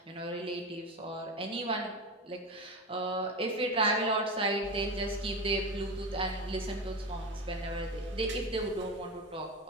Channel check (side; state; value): both; normal; correlation 0.22